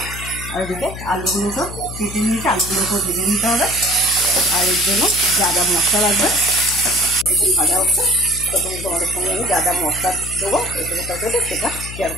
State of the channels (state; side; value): noise; left; hum, 11 dB below the sound